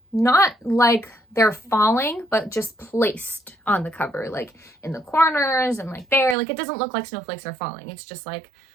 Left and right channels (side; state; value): left; drops out; at 6.4 s